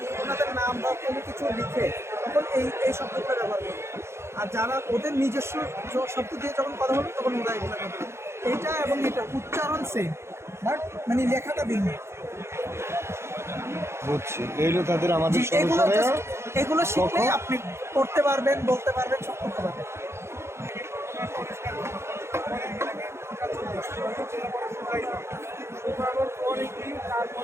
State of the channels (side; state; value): left; late; 0.13 ms